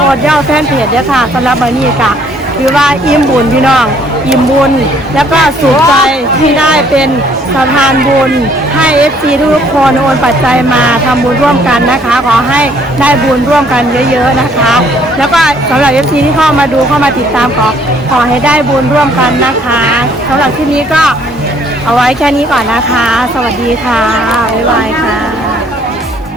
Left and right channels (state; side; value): normal; both; correlation 0.63